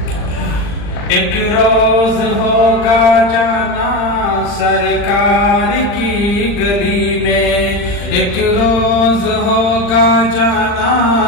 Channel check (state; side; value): late; right; 40 ms